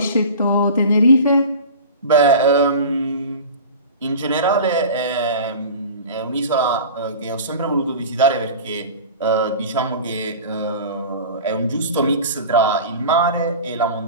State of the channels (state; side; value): inverted; both; correlation -0.36